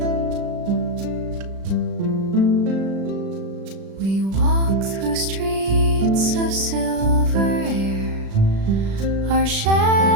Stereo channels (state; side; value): late; left; 36 ms